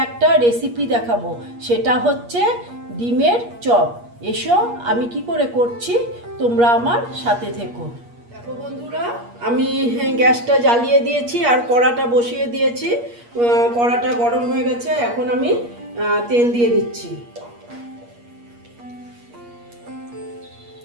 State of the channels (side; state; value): left; late; 8.4 ms